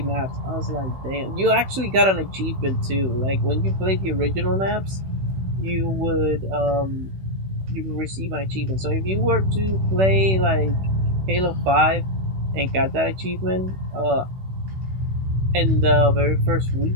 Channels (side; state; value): left; late; 16 ms